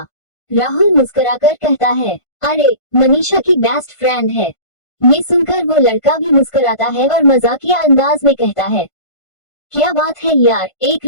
राहुल मुस्कुराकर कहता है, अरे, मनीषा की बेस्ट फ्रेंड है। ये सुनकर वो लड़का भी मुस्कुराता है और मजाकिया अंदाज में कहता है, क्या बात है यार, एक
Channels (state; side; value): late; right; 1.5 ms